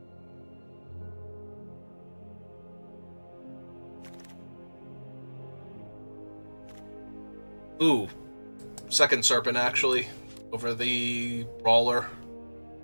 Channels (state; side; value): inverted; both; correlation -1.00